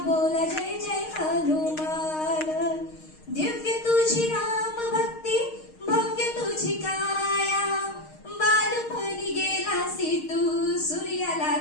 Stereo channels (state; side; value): late; right; 6.5 ms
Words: बोला जय जय हनुमान, दिव्य तुझी राम भक्ती भव्य तुझी काया, बालपणी गेलासी तू सूर्याला